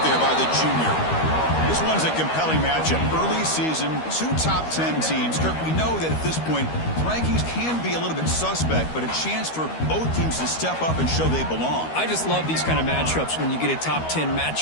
there by the junior. This one's a compelling matchup. Early season, 2 top 10 teams. Kirk, we know that at this point, rankings can be a little bit suspect, but a chance for both teams to step up and show they belong. I just love these kind of matchups when you get a top 10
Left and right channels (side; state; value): right; late; 13 ms